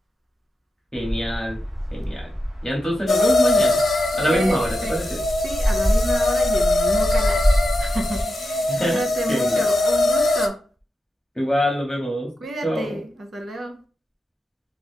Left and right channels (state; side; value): normal; both; correlation 0.89